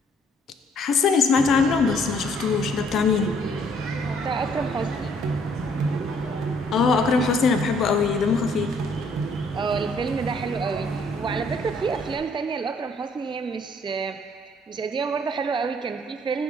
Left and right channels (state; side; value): normal; both; correlation 0.64